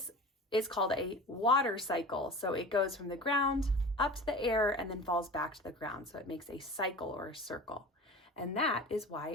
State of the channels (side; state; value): both; normal; correlation 0.36